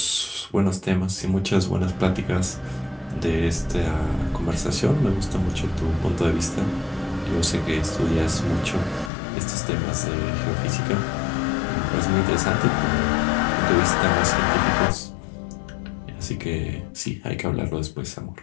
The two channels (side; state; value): right; drops out; at 9.1 s